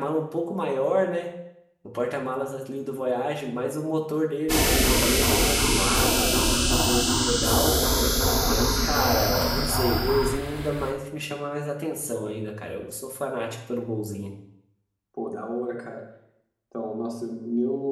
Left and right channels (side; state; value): both; identical; correlation 1.00